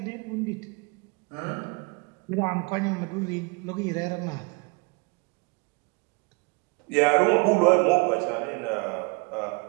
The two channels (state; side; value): quieter; left; 30.2 dB